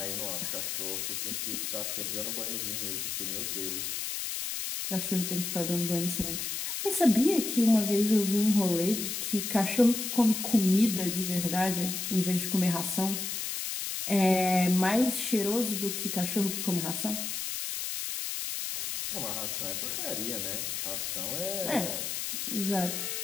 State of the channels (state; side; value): noise; left; hiss, 3 dB below the sound